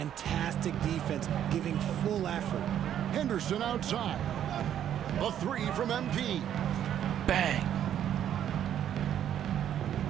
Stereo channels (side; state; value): left; quieter; 10.3 dB